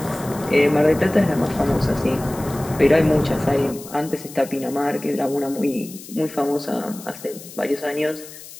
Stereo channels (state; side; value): noise; left; hiss, 16 dB below the sound